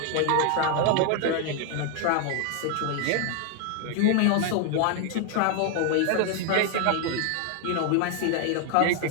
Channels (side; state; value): both; different; correlation 0.00